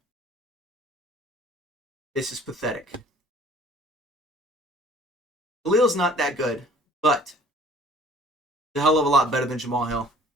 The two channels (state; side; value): normal; both; correlation 0.53